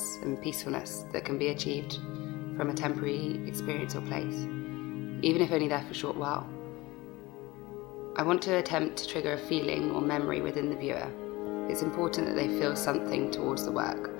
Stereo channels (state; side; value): quieter; right; 21.2 dB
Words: and peacefulness that can be achieved from a temporary experience or place, even if only there for a short while. I want to attempt to trigger a feeling or memory within the viewer. It's important that they feel something towards the work,